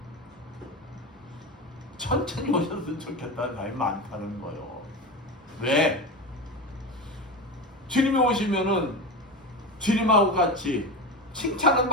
천천히 오셨으면 좋겠다는 사람이 많다는 거예요. 왜? 주님이 오시면은 주님하고 같이 칭찬을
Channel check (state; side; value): normal; both; correlation 0.20